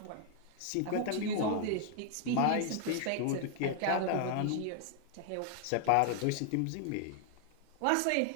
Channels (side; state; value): both; different; correlation 0.00